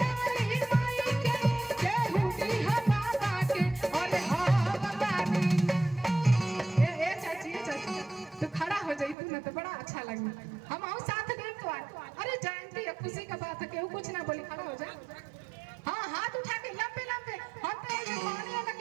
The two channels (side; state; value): left; drops out; at 9.2 s